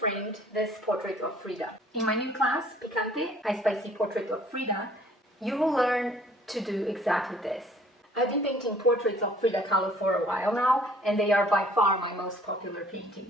this portrait of Frida. In my new class, Picante, a spicy portrait of Frida, you will learn to do exactly this. I've been painting portraits of Frida Kahlo for a while now, and they are by far my most popular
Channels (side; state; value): both; normal; correlation 0.56